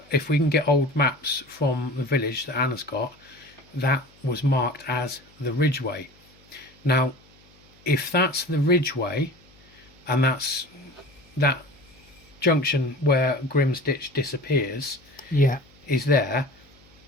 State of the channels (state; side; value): noise; left; hum, 29 dB below the sound